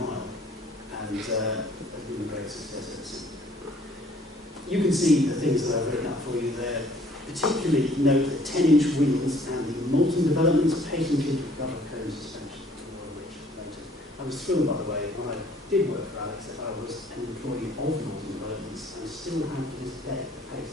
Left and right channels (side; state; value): both; normal; correlation 0.58